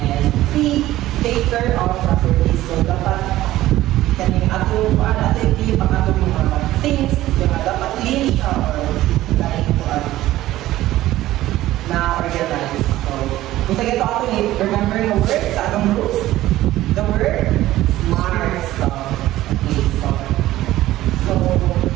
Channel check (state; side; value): quieter; left; 15.3 dB